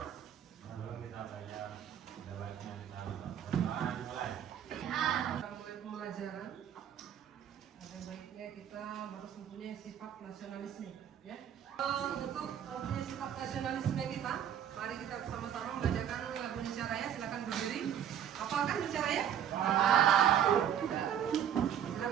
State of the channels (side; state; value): left; quieter; 9.6 dB